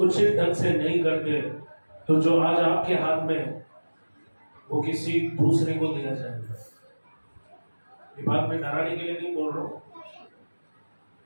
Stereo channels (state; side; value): inverted; both; correlation -1.00